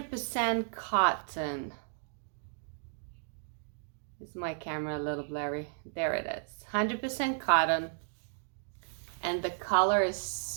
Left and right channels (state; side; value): silent; left; digital silence